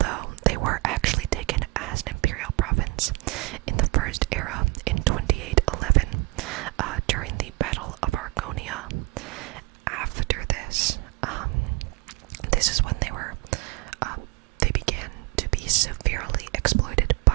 they were actually taken as an imperial province in the First Era in 2811 during the Battle of Argonia. After this, this is when they began to be severely exploited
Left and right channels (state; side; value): quieter; left; 23.5 dB